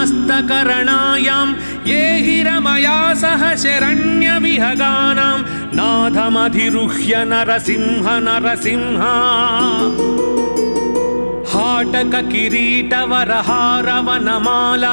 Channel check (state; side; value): inverted; both; correlation -1.00